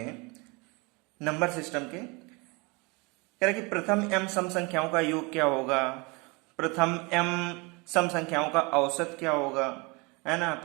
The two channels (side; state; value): left; quieter; 28.1 dB